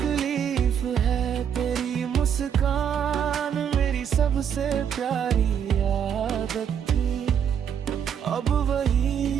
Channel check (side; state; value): left; quieter; 8.2 dB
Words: है। तेरी मुस्कान मेरी सबसे प्यारी आदत थी, अब